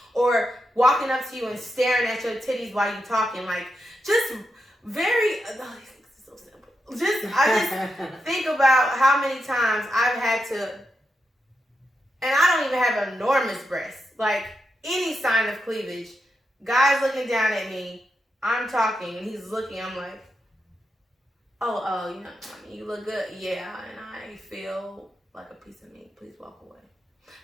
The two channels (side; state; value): both; normal; correlation 0.86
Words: or walking up to you and staring at your titties while you're talking. Like, just very, these things are so simple. I just think about how many times I've had to, and I don't even have enormous breasts, like any sign of cleavage, guys looking down at me, I'm talking, and he's looking, I'm like, oh, you know, I mean, you look good. Yeah, and I feel like a piece of meat. Please walk away.